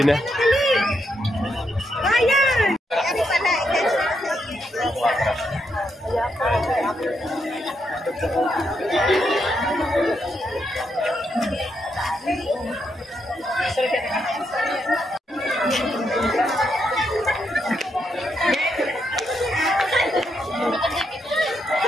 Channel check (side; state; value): both; normal; correlation 0.80